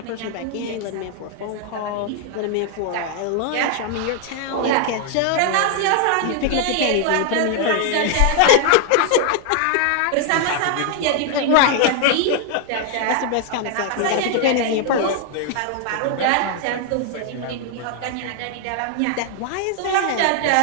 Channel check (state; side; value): different; both; correlation 0.00